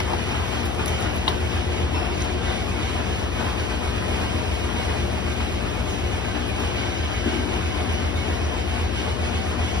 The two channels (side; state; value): left; noise; hum, 3 dB below the sound